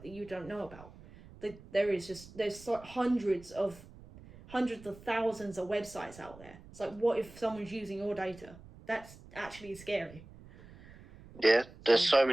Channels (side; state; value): right; noise; rumble, 20 dB below the sound